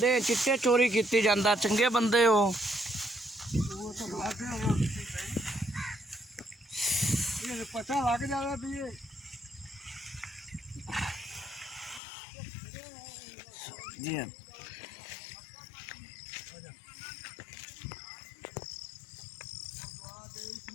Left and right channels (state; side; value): drops out; right; at 12.0 s